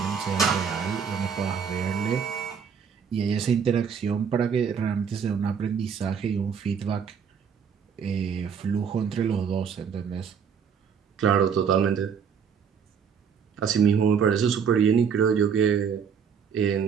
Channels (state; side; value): quieter; left; 7.0 dB